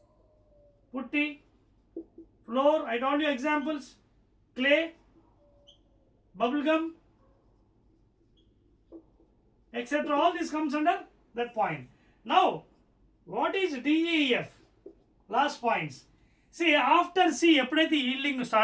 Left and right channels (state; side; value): identical; both; correlation 1.00